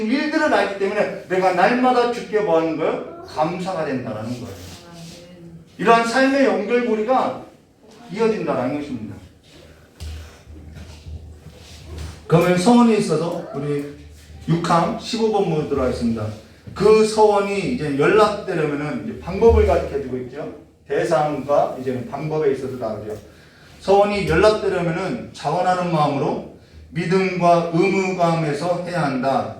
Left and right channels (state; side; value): identical; both; correlation 1.00